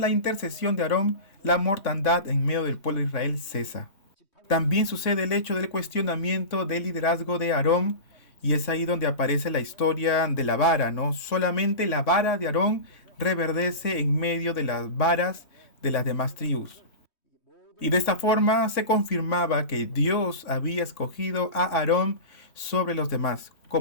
la intercesión de Aarón, la mortandad en medio del pueblo de Israel cesa. También sucede el hecho del cuestionamiento del liderazgo de Aarón, y es ahí donde aparece la historia de la vara, ¿no? Solamente la vara de Aarón reverdece en medio de las varas de las demás tribus. Y de esta forma se confirmaba que Dios había escogido a Aarón sobre los demás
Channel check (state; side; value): late; right; 3.6 ms